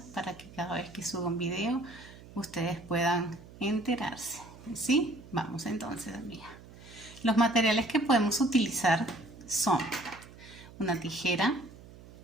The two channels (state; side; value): noise; right; hum, 19 dB below the sound